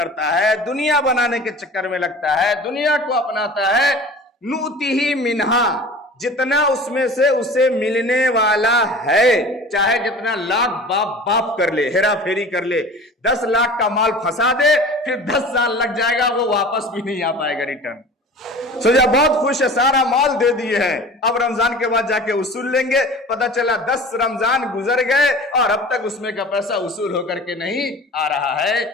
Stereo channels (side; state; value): both; normal; correlation 0.40